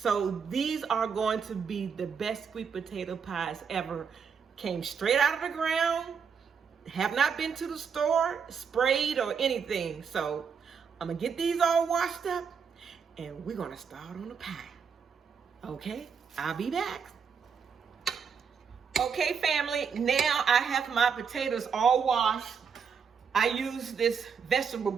these are going to be the best sweet potato pies ever. Came straight out of the ground, have not been to the store, sprayed or anything. So I'm gonna get these all washed up, and we're gonna start on the pie. Okay, I'll be back. Okay, family, now I have my potatoes all washed. I use this vegetable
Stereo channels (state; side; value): quieter; left; 6.4 dB